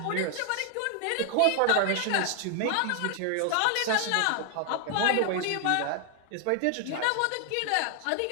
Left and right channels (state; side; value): different; both; correlation 0.00